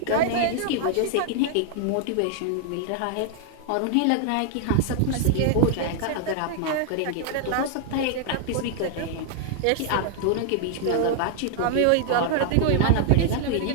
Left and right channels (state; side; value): different; both; correlation 0.00